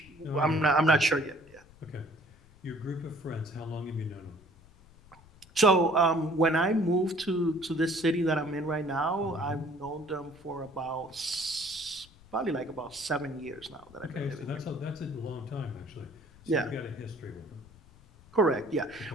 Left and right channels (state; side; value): noise; left; rumble, 25 dB below the sound